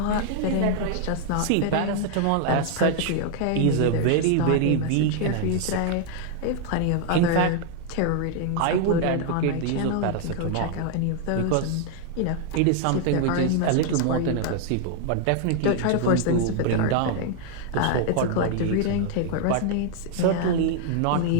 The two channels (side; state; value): both; different; correlation 0.00